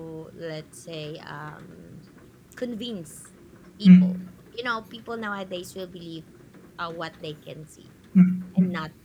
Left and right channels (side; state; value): both; identical; correlation 1.00